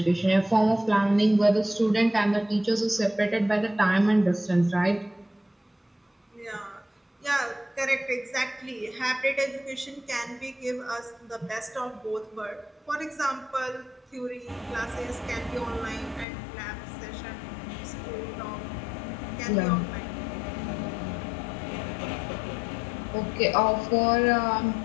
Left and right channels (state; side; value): drops out; right; at 16.2 s